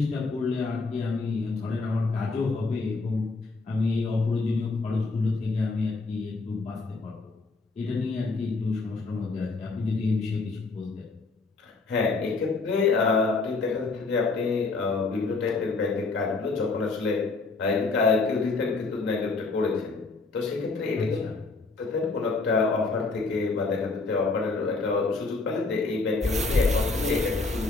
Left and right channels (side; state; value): right; quieter; 3.8 dB